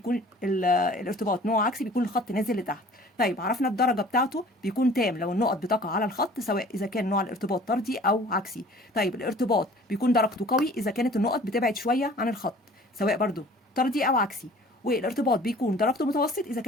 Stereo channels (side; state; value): both; normal; correlation 0.49